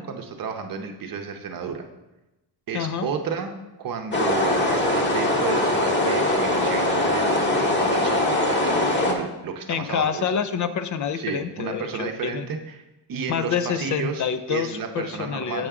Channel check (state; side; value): normal; both; correlation 0.01